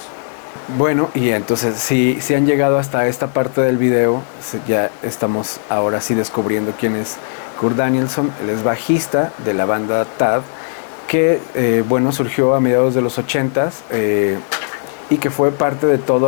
Bueno, y entonces si han llegado hasta esta parte del video, ya estamos ahora sí descubriendo quién es Kurt Danielson. Él es bajista de la banda Tad, que bueno, surgió a mediados de los 80s y que fue parte de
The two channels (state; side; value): silent; right; digital silence